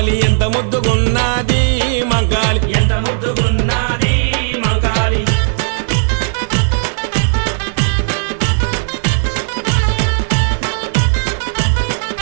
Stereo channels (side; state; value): left; silent; 67 dB below the other